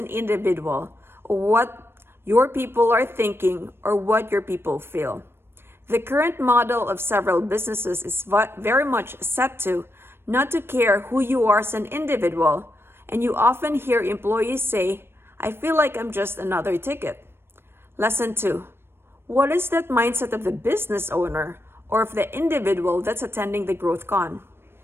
individual, or what your people are thinking, or what your people feel. The current model of several businesses is very much set to not to care who you are as an individual, and you often hear employees say, "I feel like I'm just another ticket." Lesson 2. What is that mindset of the business owner or of the individual that's attending the Growth Con?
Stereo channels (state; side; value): late; left; 0.11 ms